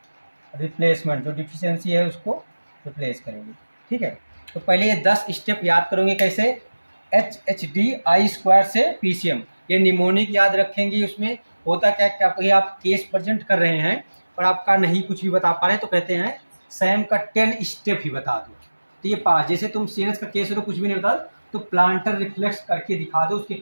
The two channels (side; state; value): both; inverted; correlation -1.00